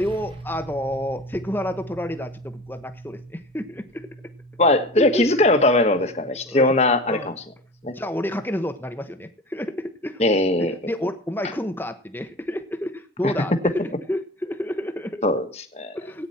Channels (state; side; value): normal; both; correlation 0.35